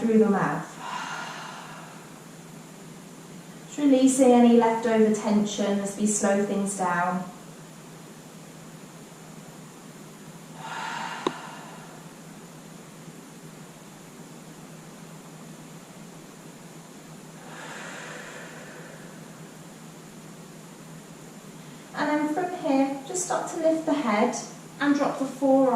the mouth. Just releasing any leftover tension as we slow things down. And then from here, just start to lift the head and drop the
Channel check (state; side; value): identical; both; correlation 1.00